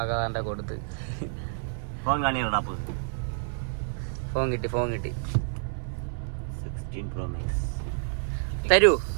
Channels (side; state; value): left; silent; digital silence